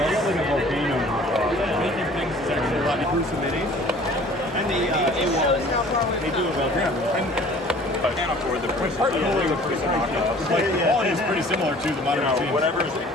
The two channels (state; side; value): normal; both; correlation 0.50